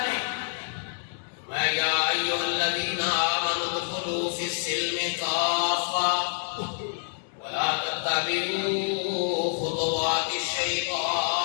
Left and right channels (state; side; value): silent; right; digital silence